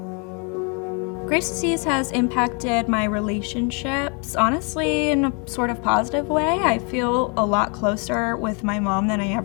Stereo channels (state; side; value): quieter; right; 35.1 dB